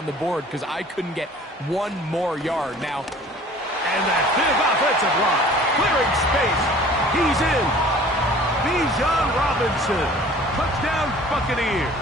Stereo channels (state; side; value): normal; both; correlation 0.48